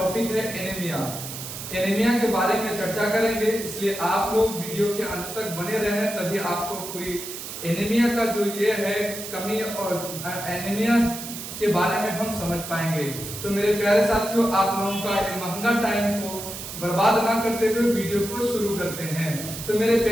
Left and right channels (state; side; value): noise; right; hiss, 9 dB below the sound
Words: है एनीमिया। एनीमिया के बारे में चर्चा करेंगे, इसलिए आप लोग वीडियो के अंत तक बने रहें, तभी आपको पूरी एनीमिया का जो ये है कमी और एनीमिया के बारे में हम समझ पाएंगे। तो मेरे प्यारे साथियों, आप लोगों का ये महंगा टाइम को बर्बाद ना करते हुए वीडियो को शुरू करते हैं। तो मेरे